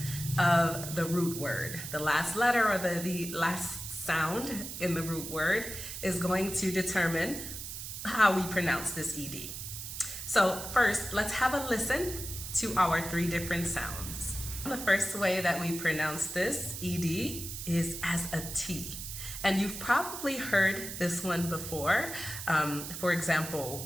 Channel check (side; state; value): right; noise; hiss, 8 dB below the sound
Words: of the root word. The last letter or the last sound in the root word is going to determine how we pronounce this ED. So first, let's have a listen to our three different sounds. The first way that we pronounce this ED is as a T. And you've probably heard this one before. For